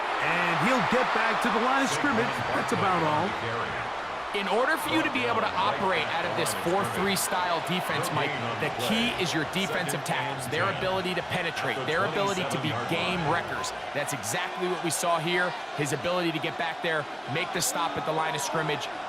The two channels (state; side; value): identical; both; correlation 1.00